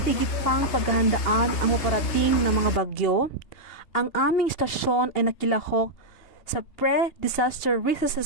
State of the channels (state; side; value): late; right; 3.3 ms